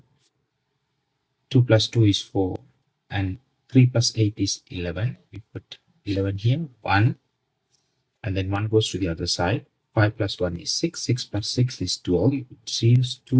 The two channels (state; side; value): identical; both; correlation 1.00